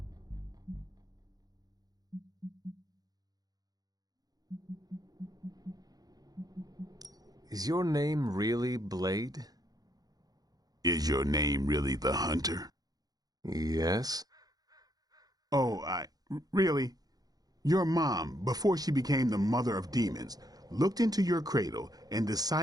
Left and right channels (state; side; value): late; left; 0.19 ms